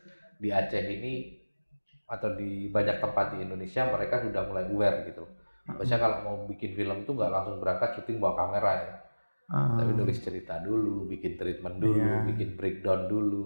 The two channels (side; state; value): both; inverted; correlation -1.00